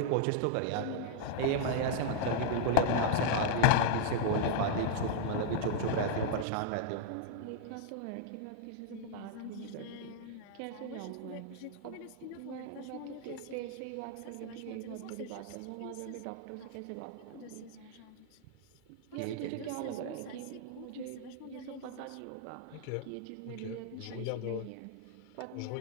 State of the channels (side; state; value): both; different; correlation -0.01